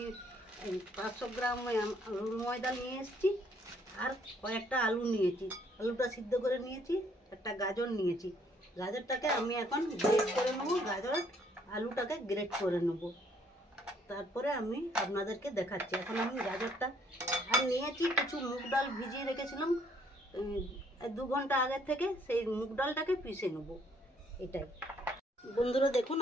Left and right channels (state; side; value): normal; both; correlation 0.65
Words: 500 গ্রাম আলুর ময়দা নিয়ে এসেছি, আর কয়েকটা আলু নিয়েছি। আলুটা সিদ্ধ করে নিয়েছি। একটা গাজর নিয়েছি। গাজরটাকে আমি এখন গ্রেট করে নেব। আলুটাকে গ্রেট করে নেব, তারপরে আমি আপনাদেরকে দেখাচ্ছি। এখন আমি গাজরটা আর নিয়েছি কিছু মুগ ডাল ভিজিয়ে রেখেছিলাম 2 ঘন্টা আগের থেকে, সেই মুগ ডালটাকে পিষে নেব। এটাই বন্ধুরা, দেখুন